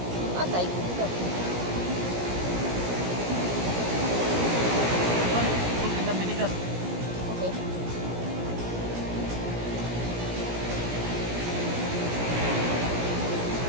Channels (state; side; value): late; left; 17 ms